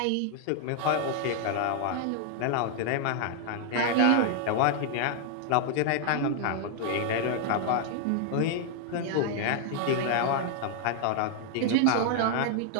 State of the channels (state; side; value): different; both; correlation 0.00